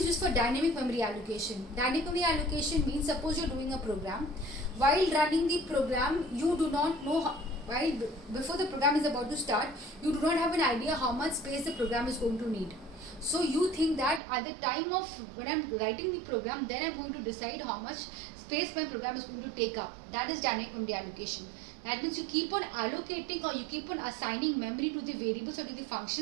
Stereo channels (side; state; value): left; drops out; at 14.2 s